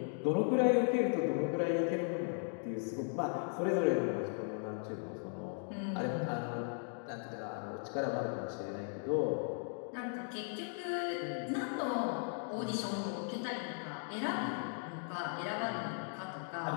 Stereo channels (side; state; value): right; silent; 53 dB below the other